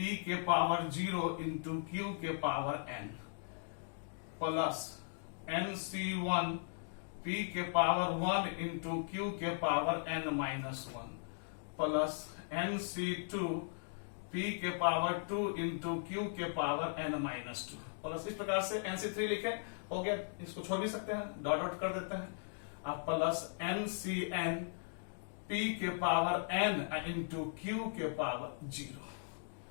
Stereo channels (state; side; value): silent; right; digital silence